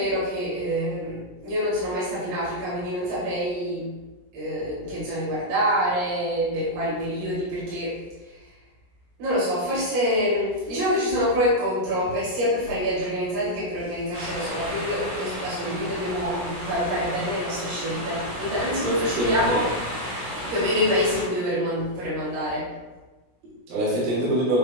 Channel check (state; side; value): late; left; 17 ms